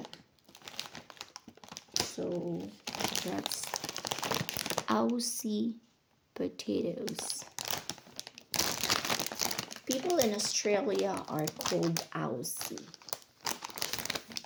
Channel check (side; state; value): both; identical; correlation 1.00